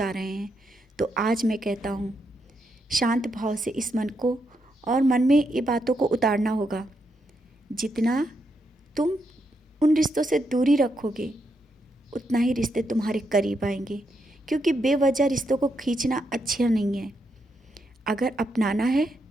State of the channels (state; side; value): normal; both; correlation 0.80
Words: रहे हैं। तो आज मैं कहता हूँ, शांत भाव से इस मन को और मन में ये बातों को उतारना होगा। जितना तुम उन रिश्तों से दूरी रखोगे, उतना ही रिश्ते तुम्हारे करीब आएंगे। क्योंकि बेवजह रिश्तों को खींचना अच्छा नहीं है। अगर अपनाना है